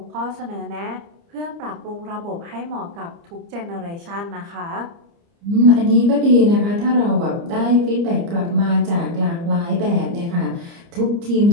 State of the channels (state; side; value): late; left; 30 ms